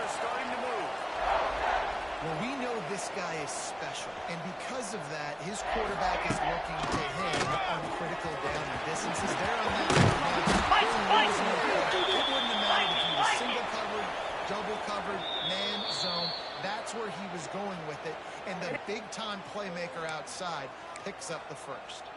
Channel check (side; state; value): both; identical; correlation 1.00